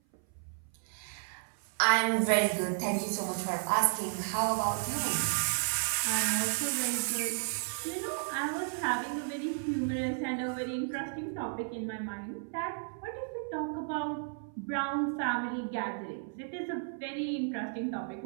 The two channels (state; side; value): silent; left; 56 dB below the other